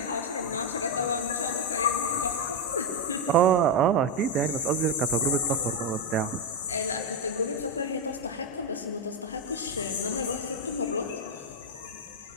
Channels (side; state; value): both; normal; correlation 0.04